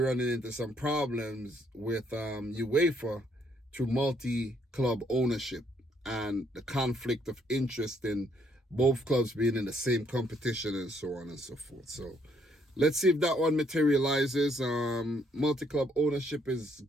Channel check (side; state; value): both; normal; correlation 0.69